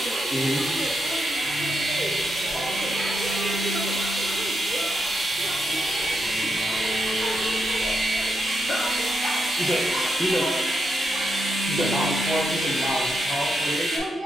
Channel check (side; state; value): both; normal; correlation 0.83